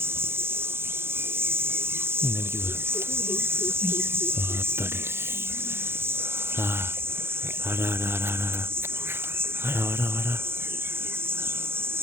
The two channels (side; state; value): left; late; 0.11 ms